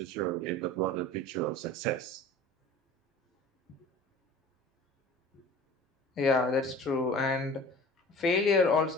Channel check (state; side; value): normal; both; correlation 0.42